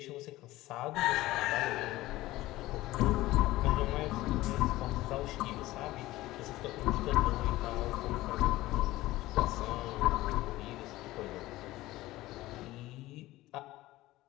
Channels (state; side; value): quieter; right; 17.5 dB